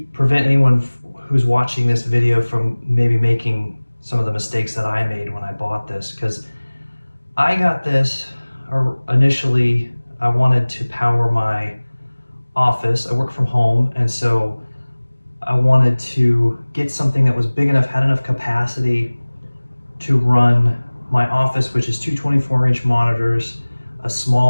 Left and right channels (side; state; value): both; inverted; correlation -1.00